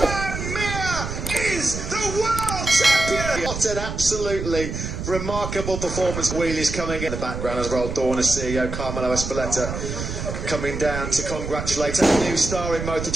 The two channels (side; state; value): right; noise; rumble, 6 dB below the sound